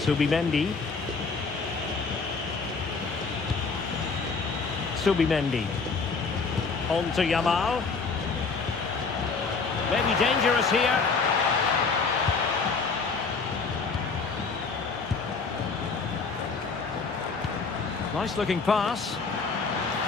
Subimendi. On to Yamal. Maybe dangerous here. Nice looking pass.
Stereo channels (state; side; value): quieter; right; 4.6 dB